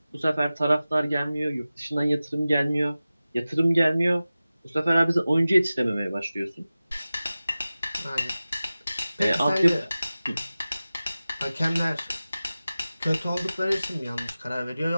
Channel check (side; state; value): both; inverted; correlation -0.96